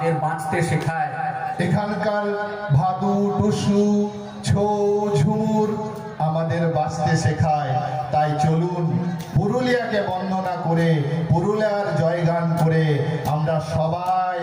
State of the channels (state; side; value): identical; both; correlation 1.00